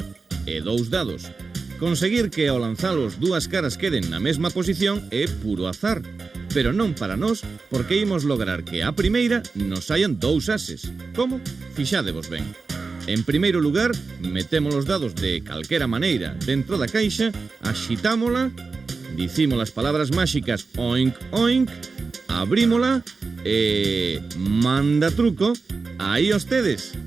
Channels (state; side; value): quieter; left; 4.3 dB